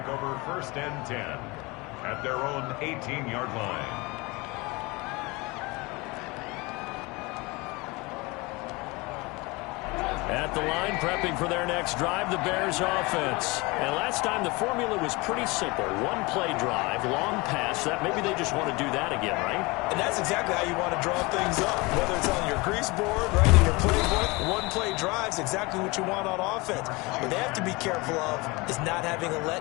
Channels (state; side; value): quieter; right; 24.7 dB